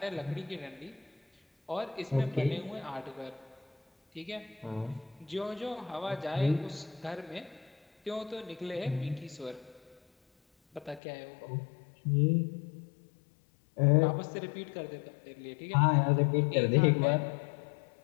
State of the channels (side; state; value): right; drops out; at 11.0 s